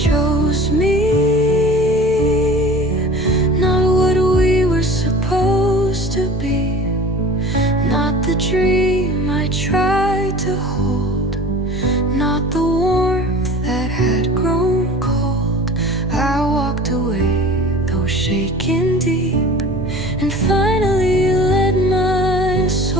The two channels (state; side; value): normal; both; correlation 0.40